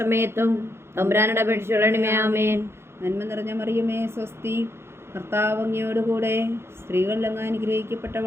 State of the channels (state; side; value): late; left; 0.12 ms